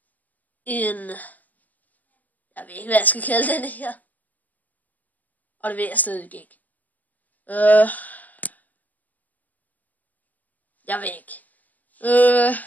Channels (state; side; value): late; right; 0.080 ms